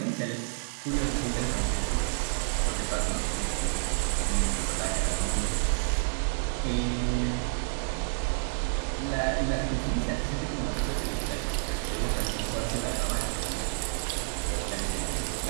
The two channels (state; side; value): silent; left; digital silence